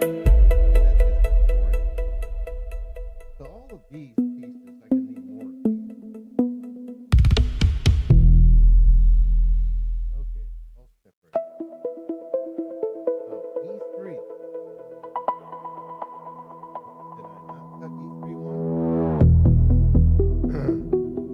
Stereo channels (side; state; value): both; identical; correlation 1.00